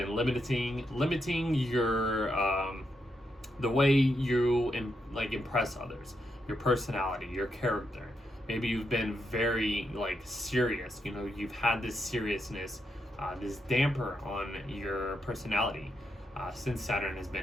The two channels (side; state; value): both; normal; correlation 0.82